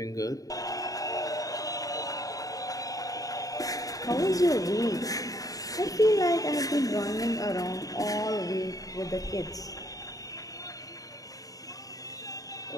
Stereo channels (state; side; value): late; right; 0.17 ms